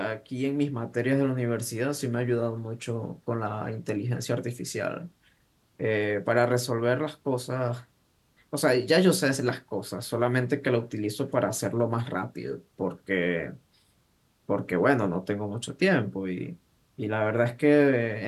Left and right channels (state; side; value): identical; both; correlation 1.00